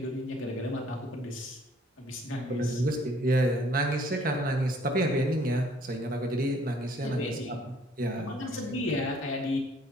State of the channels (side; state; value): both; normal; correlation 0.60